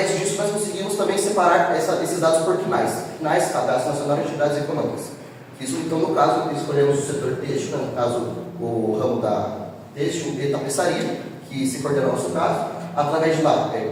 disso, nós conseguimos também separar esses dados por CNAES. CNAES, Cadastro Nacional de Entidades Econômicas. Isso, então, no caso, escolhemos o setor têxtil, no caso, o ramo da têxtil e tapeçaria, que se coordena no nosso caso. Através de lá,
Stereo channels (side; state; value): both; identical; correlation 1.00